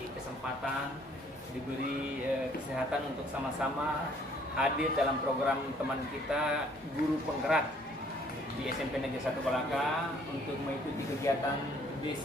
kesempatan, diberi kesehatan untuk sama-sama hadir dalam program teman kita Guru Penggerak di SMP Negeri 1 Kolaka untuk mengikuti kegiatan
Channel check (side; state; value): both; normal; correlation 0.61